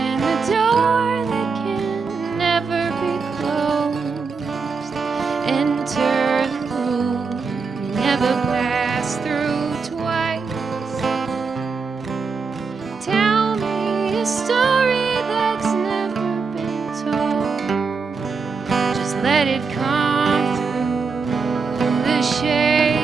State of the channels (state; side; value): quieter; left; 4.9 dB